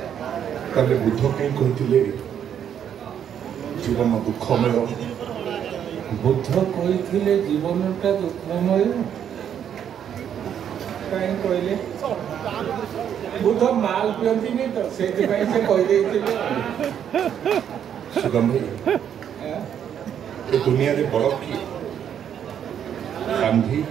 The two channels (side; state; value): left; quieter; 9.0 dB